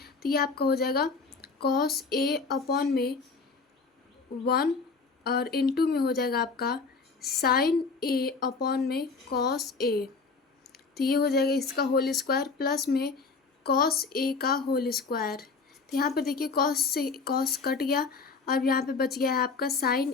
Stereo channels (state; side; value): quieter; right; 4.6 dB